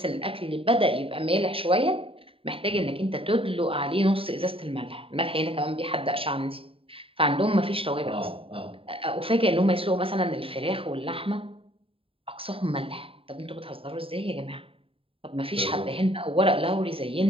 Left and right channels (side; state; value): left; late; 0.27 ms